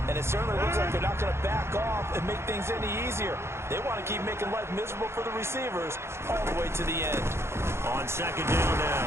and it certainly looks like they're not going to back off and make things any easier. They want to keep making life miserable for the receivers all the way to the end. On second down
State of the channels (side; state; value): left; late; 0.13 ms